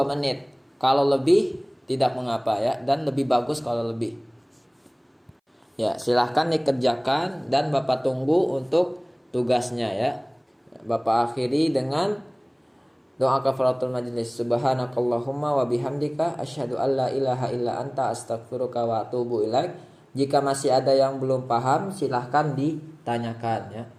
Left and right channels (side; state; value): both; identical; correlation 1.00